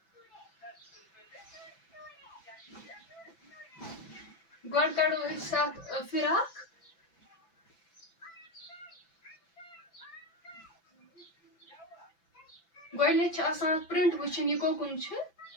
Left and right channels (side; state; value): right; late; 6.0 ms